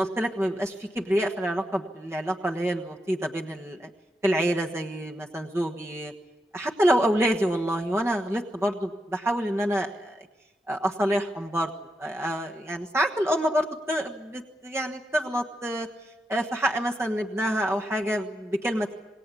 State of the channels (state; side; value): normal; both; correlation 0.85